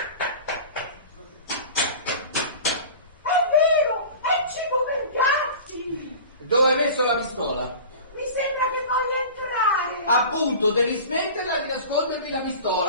vero! È cibo per gatti! Dove hai messo la pistola? Mi sembra che voglia entrare! Appunto, devi smetterla di nascondermi la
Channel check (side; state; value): both; inverted; correlation -0.37